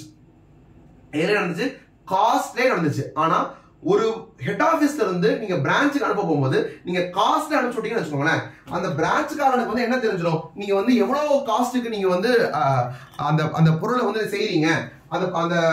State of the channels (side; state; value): both; identical; correlation 1.00